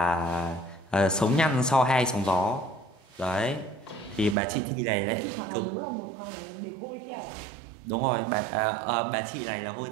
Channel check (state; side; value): drops out; left; at 4.4 s